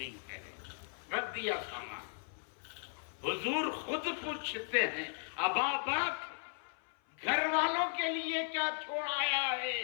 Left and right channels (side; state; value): right; silent; 53 dB below the other